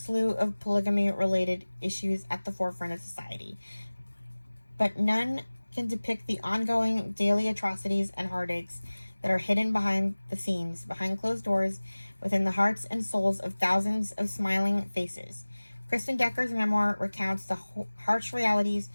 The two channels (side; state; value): both; inverted; correlation -1.00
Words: of polygamy-related issues at the forefront of society. But none can depict the ongoing daily atrocities and heartaches that are hidden behind the scenes, behind closed doors, within the hearts and souls of thousands of smiling faces. Kristen Decker's memoir recounts the harsh realities